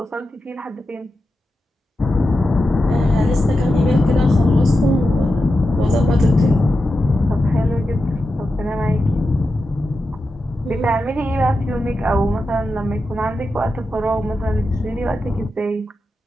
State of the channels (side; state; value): both; normal; correlation 0.90